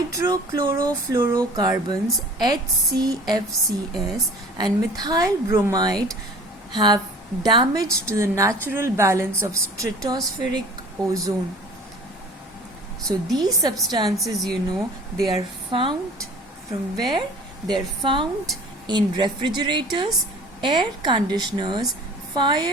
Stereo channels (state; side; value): normal; both; correlation 0.45